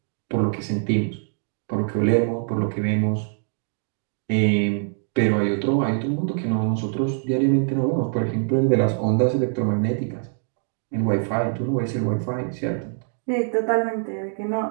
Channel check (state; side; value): silent; left; 62 dB below the other